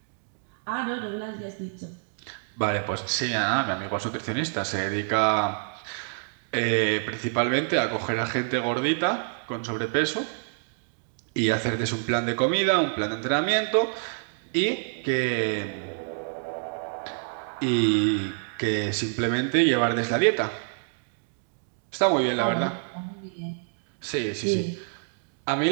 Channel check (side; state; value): left; silent; digital silence